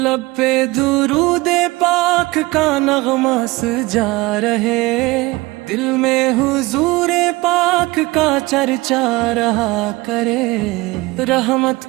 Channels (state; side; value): quieter; left; 21.4 dB